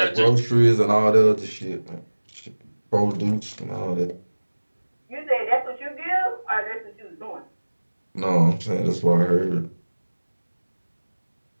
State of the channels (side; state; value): both; inverted; correlation -1.00